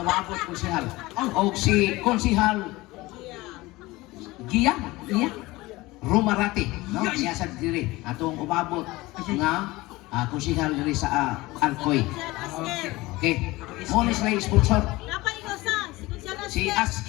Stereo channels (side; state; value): right; quieter; 20.3 dB